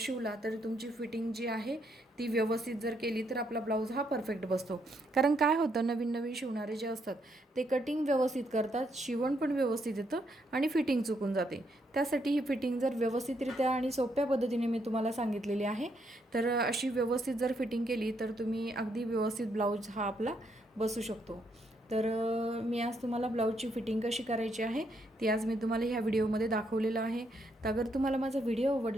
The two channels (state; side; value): normal; both; correlation 0.75